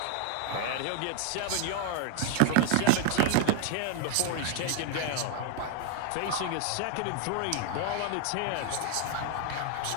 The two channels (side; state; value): both; different; correlation 0.00